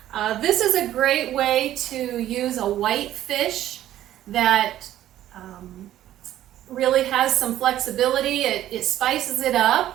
This is a great way to use a white fish that really has some flexibility. It spices it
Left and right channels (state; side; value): quieter; left; 12.8 dB